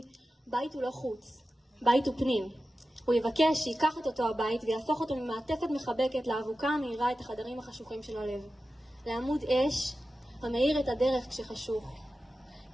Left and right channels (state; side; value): normal; both; correlation 0.94